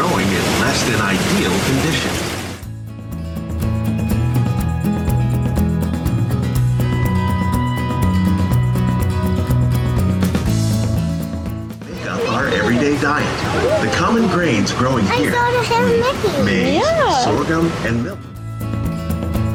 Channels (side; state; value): both; identical; correlation 1.00